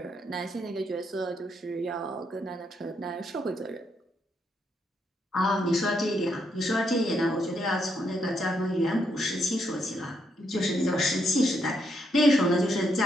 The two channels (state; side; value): normal; both; correlation 0.77